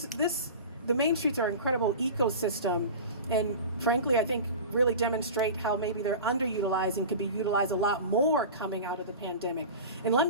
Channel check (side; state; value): both; inverted; correlation -0.33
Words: Main Streets are an incredible ecosystem, and frankly, I think really demonstrate how maybe they're underutilized and could be utilized a lot more coming out of the pandemic. And let